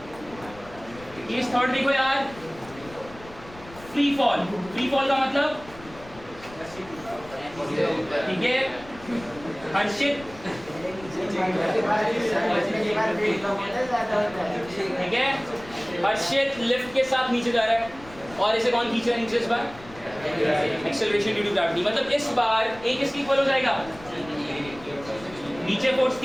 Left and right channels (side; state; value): left; noise; rumble, 19 dB below the sound